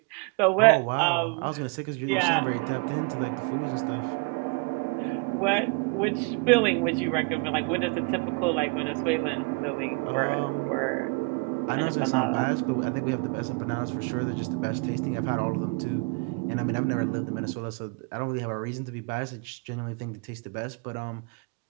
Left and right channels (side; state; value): left; quieter; 31.7 dB